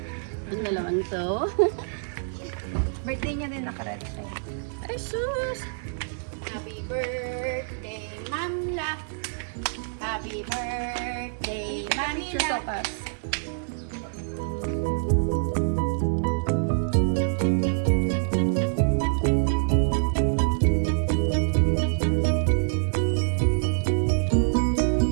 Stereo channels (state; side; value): silent; left; digital silence